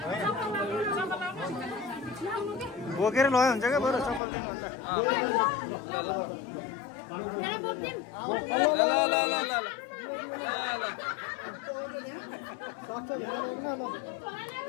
बोकेर लग्यो हुन्छ क्या बरु चप्पल दिनुभन्दा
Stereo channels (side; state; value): right; drops out; at 4.2 s